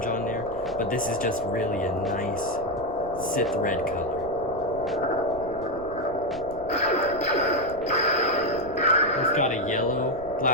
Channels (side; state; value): right; noise; rumble, 15 dB below the sound